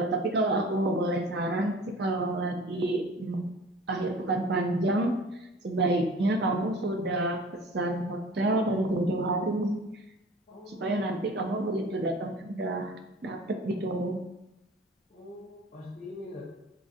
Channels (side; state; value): both; normal; correlation 0.44